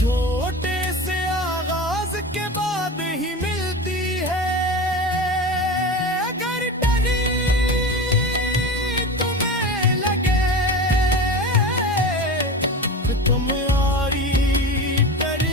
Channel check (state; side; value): normal; both; correlation 0.28